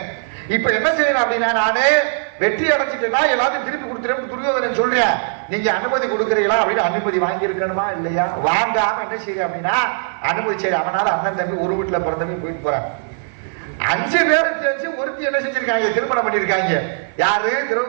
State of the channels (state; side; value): silent; left; 56 dB below the other